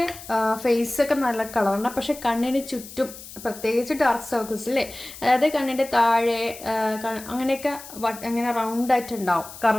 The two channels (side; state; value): left; noise; hiss, 15 dB below the sound